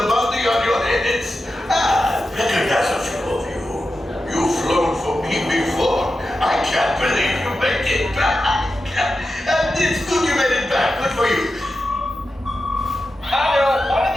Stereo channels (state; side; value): normal; both; correlation 0.91